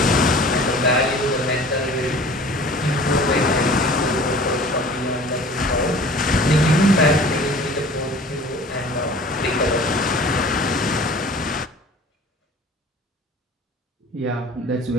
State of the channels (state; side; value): normal; both; correlation 0.45